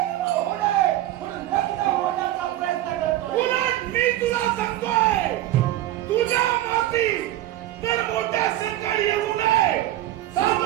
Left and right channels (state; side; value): quieter; left; 14.4 dB